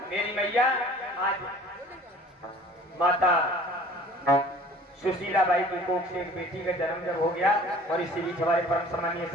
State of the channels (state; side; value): normal; both; correlation 0.48